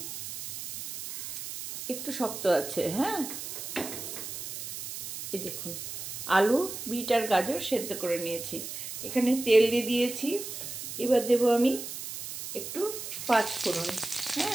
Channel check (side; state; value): right; noise; hiss, 8 dB below the sound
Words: একটু শক্ত আছে। হ্যাঁ, এই দেখুন আলু, বিট আর গাজর সেদ্ধ করে নিয়েছি। এখানে তেল দিয়ে দিয়েছি। এবার দেবো আমি একটু পাঁচফোড়ন।